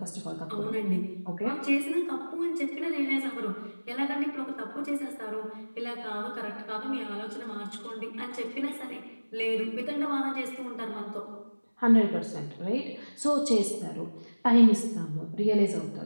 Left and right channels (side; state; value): both; inverted; correlation -1.00